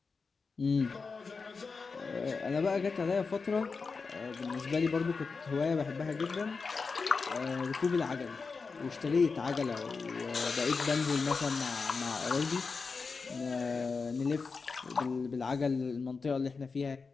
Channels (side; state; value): right; quieter; 4.7 dB